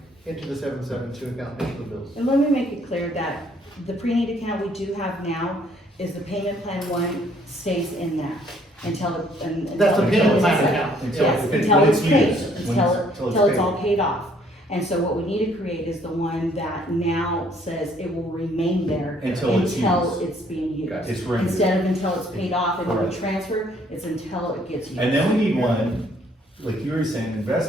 into the 772 account, into the bills. And let me make it clear that the pre-need account we do have now is the payment plan one stays in that until. That's the payment plan is- account. Yes, Until until it's paid, used, until it's all paid off. And so what we need to create is the one that now says it will remain there Until it's used. it's being used. It's rented. Instead of until it's paid off and then Correct. transferred, it's until it gets used. And then we need one, like you were saying,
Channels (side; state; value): both; normal; correlation 0.63